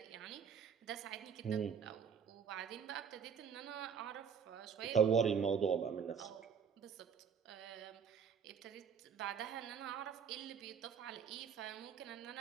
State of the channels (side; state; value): left; quieter; 7.1 dB